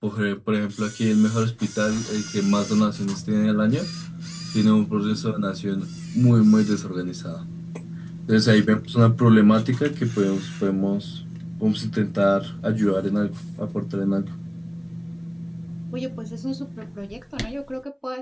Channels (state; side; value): identical; both; correlation 1.00